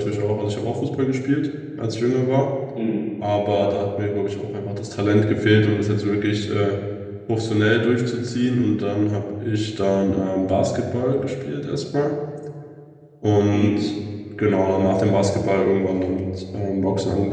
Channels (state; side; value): identical; both; correlation 1.00